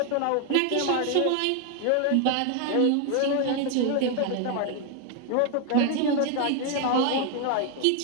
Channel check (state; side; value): different; both; correlation 0.01